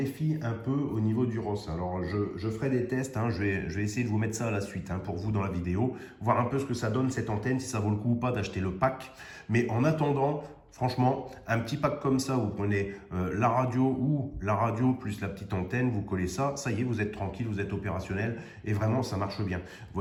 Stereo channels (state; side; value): identical; both; correlation 1.00